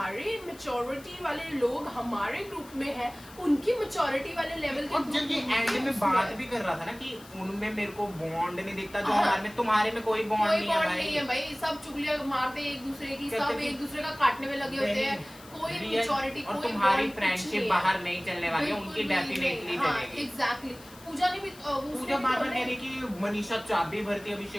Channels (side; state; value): left; noise; hiss, 21 dB below the sound